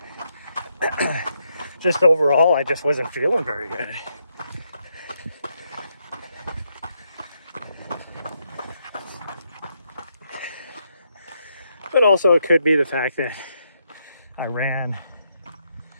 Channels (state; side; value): inverted; both; correlation -0.79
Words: overall, I just wasn't feeling very good. But also it could be the fact that I ran